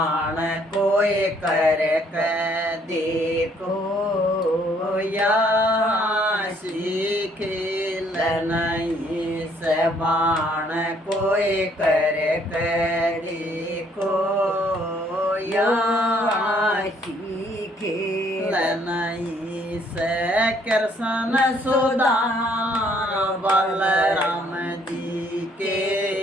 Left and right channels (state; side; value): normal; both; correlation 0.65